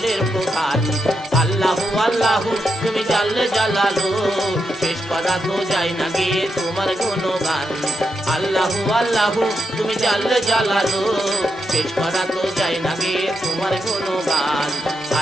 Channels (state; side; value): normal; both; correlation 0.84